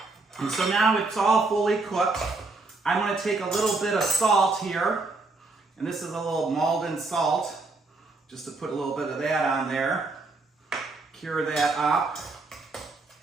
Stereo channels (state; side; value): quieter; left; 3.6 dB